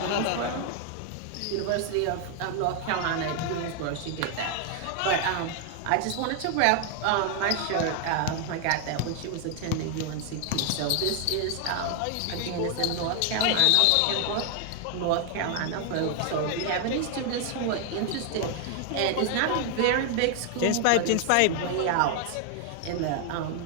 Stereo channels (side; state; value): both; different; correlation 0.00